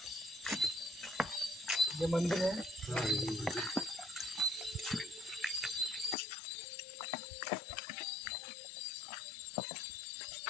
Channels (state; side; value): drops out; right; at 6.2 s